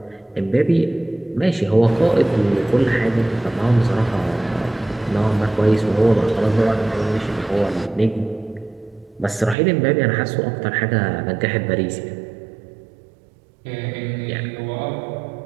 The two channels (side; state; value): left; drops out; at 9.6 s